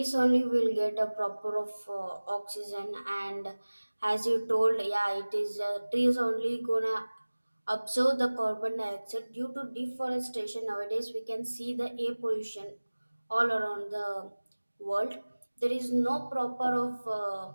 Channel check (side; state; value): both; inverted; correlation -1.00